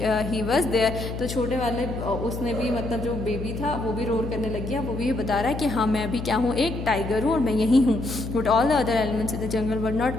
he was there, तो छोटे वाले उसने भी मतलब जो बेबी था वो भी रोर करने लग गया, वो भी बता रहा है कि हाँ मैं भी क्या हूँ, एक टाइगर हूँ और मैं यही हूँ। But all the other elements in the jungle were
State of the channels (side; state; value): left; noise; hum, 6 dB below the sound